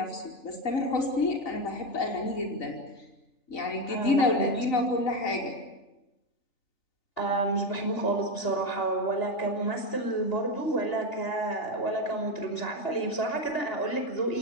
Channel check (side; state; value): right; late; 3.4 ms